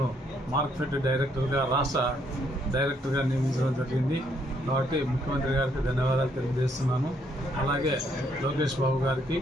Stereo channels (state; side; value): normal; both; correlation 0.71